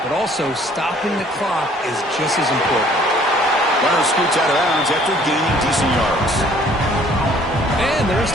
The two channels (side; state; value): both; normal; correlation 0.58